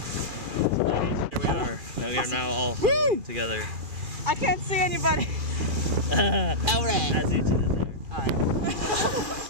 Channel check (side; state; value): left; late; 2.4 ms